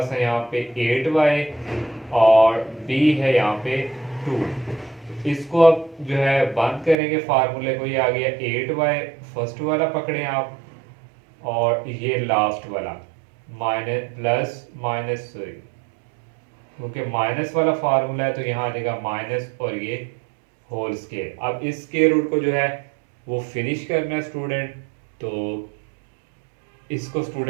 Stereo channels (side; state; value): left; drops out; at 7.0 s